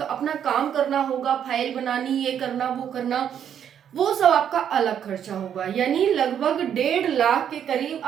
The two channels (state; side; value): quieter; left; 9.0 dB